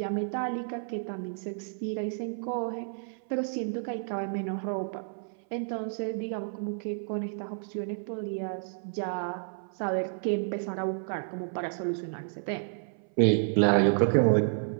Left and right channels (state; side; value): silent; left; 57 dB below the other